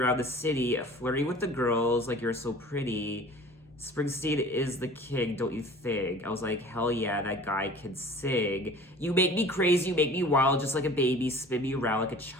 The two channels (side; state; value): both; normal; correlation 0.44